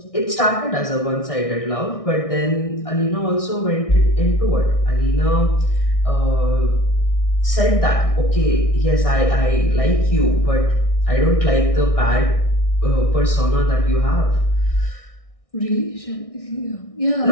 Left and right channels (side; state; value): right; late; 1.6 ms